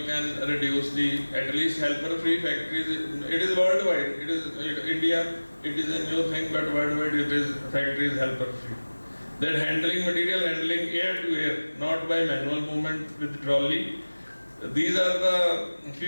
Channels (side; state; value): both; inverted; correlation -1.00